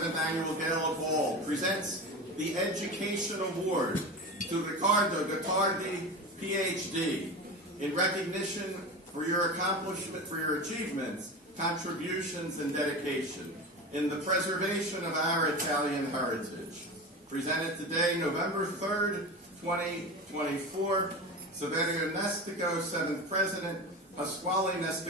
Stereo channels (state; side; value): normal; both; correlation 0.26